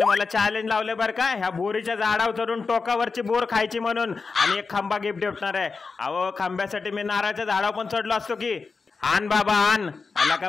मला चॅलेंज लावले बरं का ह्या बोरीच्या झाडावर चढून टोकावरची बोर खायची म्हणून आणि एक खांबा गिफ्ट देणार आहे. अहो खांब्यासाठी मी नारळाच्या झाडावर पण चढलो असतो की. आण बाबा आण. आला का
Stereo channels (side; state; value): right; quieter; 4.6 dB